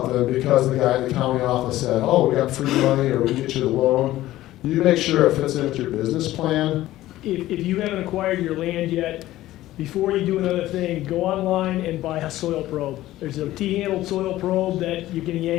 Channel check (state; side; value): quieter; right; 15.3 dB